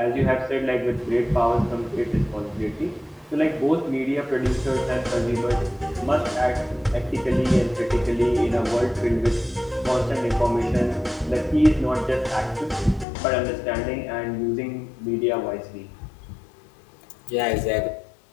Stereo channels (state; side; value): drops out; right; at 13.1 s